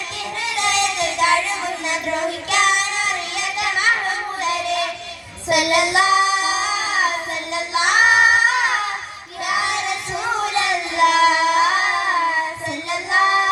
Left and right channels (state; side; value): identical; both; correlation 1.00